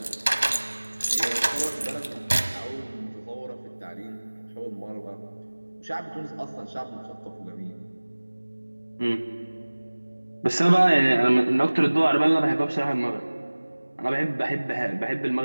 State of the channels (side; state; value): both; inverted; correlation -1.00